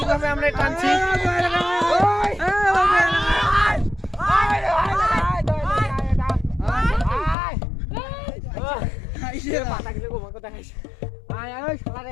আমরা টানছি। পাতা গেলে গোমা কথা খাইছে। আয় আয় শালা রে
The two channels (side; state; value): right; drops out; at 7.4 s